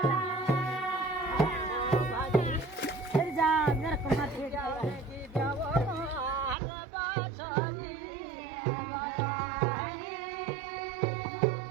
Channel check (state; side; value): drops out; left; at 6.6 s